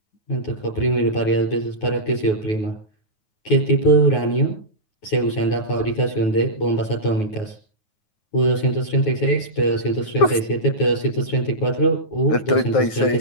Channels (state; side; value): late; right; 9.4 ms